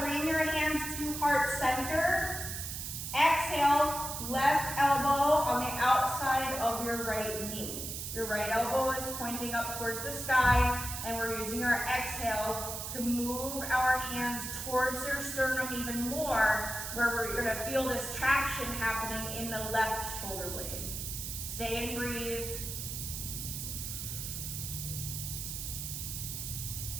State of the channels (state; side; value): noise; right; hiss, 5 dB below the sound